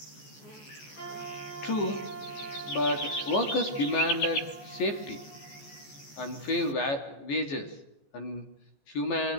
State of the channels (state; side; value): late; right; 14 ms